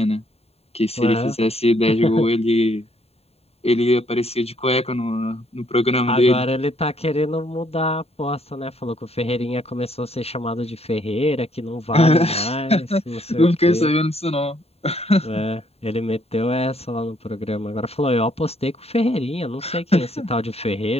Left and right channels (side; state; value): right; late; 0.29 ms